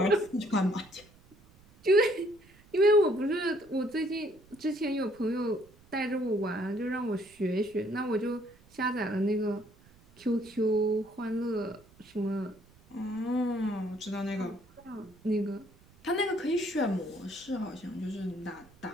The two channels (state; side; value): noise; right; rumble, 27 dB below the sound